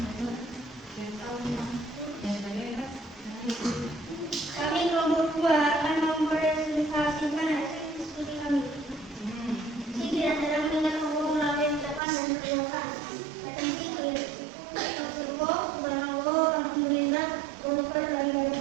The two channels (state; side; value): drops out; left; at 12.0 s